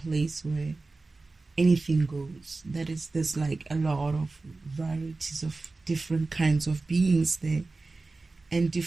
place where anything goes. That is, there's like a lot of varieties of different kinds of beings there, and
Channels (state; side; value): quieter; left; 3.5 dB